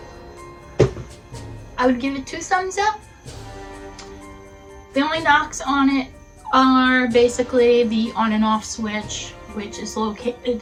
I would give it 2 thumbs up. The only knocks on it are basically the on and off switch, which is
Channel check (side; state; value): both; identical; correlation 1.00